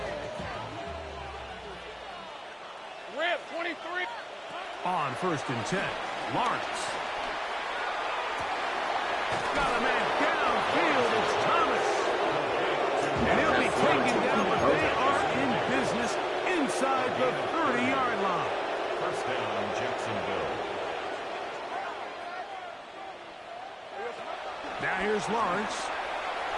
Rip, 23. On 1st and 10, Lawrence. Got a man downfield. It's Thomas. And he'll be taken down, but they are in inside the 30-yard line. First down, Jacksonville. Now here's Lawrence.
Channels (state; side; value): identical; both; correlation 1.00